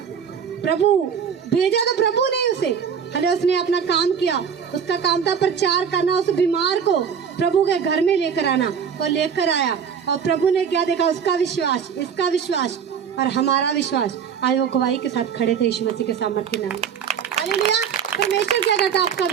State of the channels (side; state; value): left; quieter; 7.3 dB